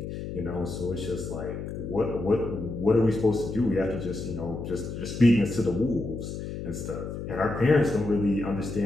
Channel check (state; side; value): noise; left; hum, 7 dB below the sound